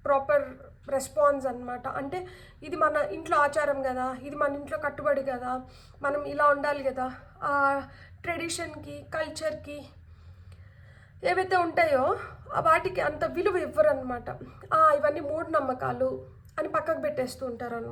proper response అనమాట. అంటే ఇది మన ఇంట్లో ఆచారం కదా, ఇది మన ఇంట్లో కట్టుబడి కదా, మనం ఇలా ఉండాలి కదా, ఆ ట్రెడిషన్కి, కల్చర్కి ఏవైతే ఉంటాయో వాటికి అంత విలువ ఇవ్వరనమాట. ఇవన్నీ మూఢనమ్మకాలు అని పక్కకు పెట్టేస్తూ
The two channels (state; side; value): identical; both; correlation 1.00